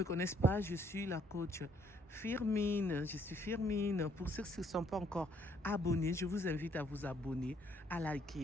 connaissent pas, je suis la coach Firmine. Je suis Firmine. Pour ceux qui ne sont pas encore abonnés, je vous invite à vous abonner, à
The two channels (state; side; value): normal; both; correlation 0.66